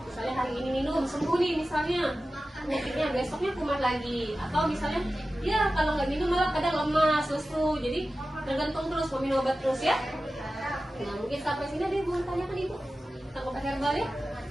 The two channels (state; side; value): normal; both; correlation 0.94